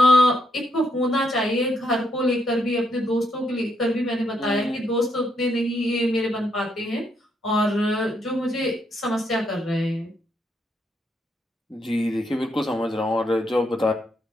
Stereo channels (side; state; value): both; normal; correlation 0.76